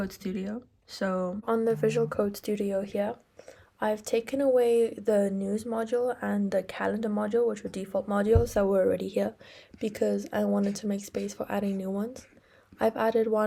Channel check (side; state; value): both; identical; correlation 1.00